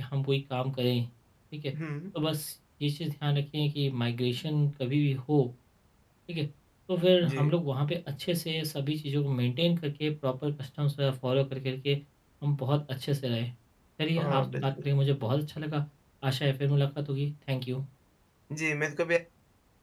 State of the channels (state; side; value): identical; both; correlation 1.00